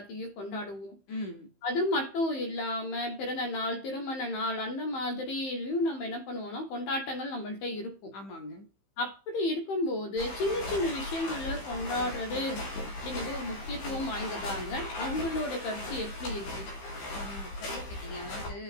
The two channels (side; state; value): right; late; 15 ms